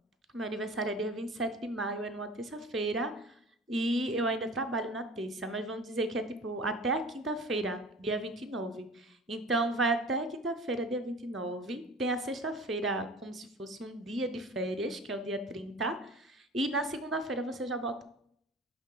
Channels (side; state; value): both; normal; correlation 0.41